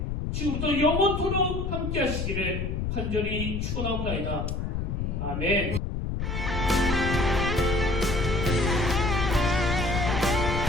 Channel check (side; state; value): left; noise; rumble, 2 dB below the sound